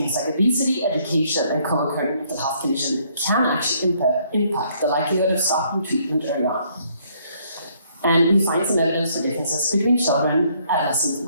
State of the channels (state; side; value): inverted; both; correlation -0.67